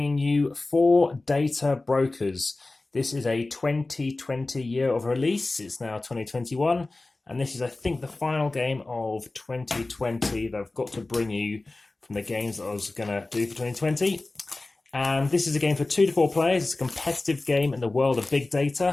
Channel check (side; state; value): right; quieter; 3.1 dB